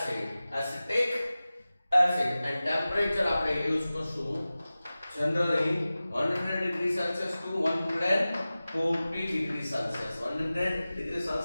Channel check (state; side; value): inverted; both; correlation -0.96